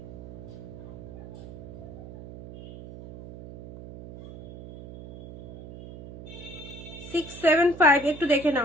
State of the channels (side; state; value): right; noise; hum, 14 dB below the sound